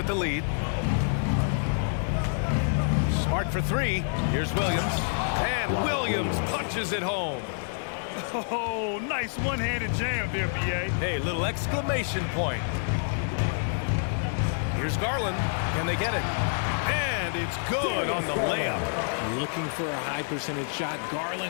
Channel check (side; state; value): right; silent; digital silence